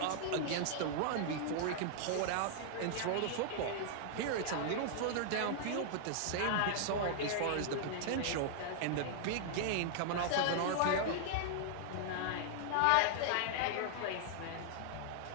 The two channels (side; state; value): both; different; correlation -0.01